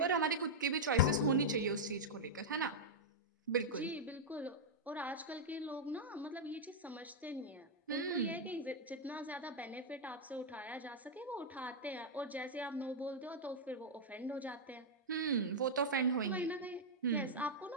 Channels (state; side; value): normal; both; correlation -0.05